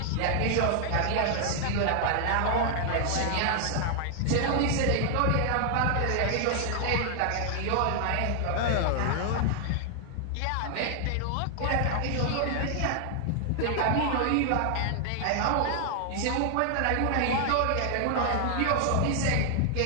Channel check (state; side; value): different; both; correlation 0.00